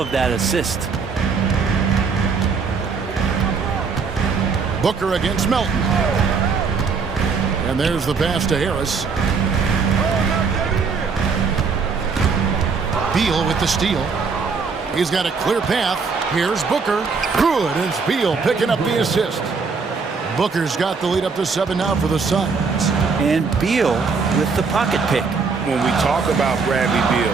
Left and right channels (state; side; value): quieter; left; 5.1 dB